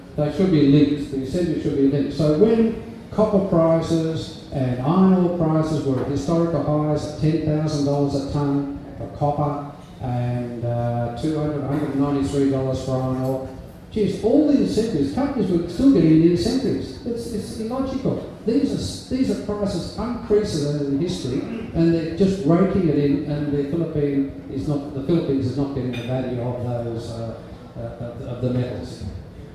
they should be linked. The incentives should be linked. So when copper prices and iron ore prices were at historical highs at $10,000 a tonne for copper and $193 for iron ore, geez, all the incentives, companies were still getting the incentives. It's illogical. these are prices unprecedented in history, and they're just raking it in, and the Philippines is not getting the value of those of the metals.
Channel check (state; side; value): identical; both; correlation 1.00